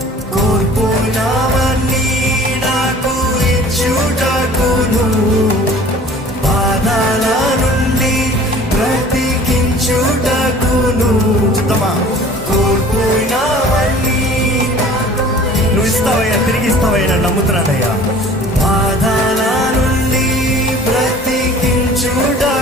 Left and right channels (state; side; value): normal; both; correlation 0.47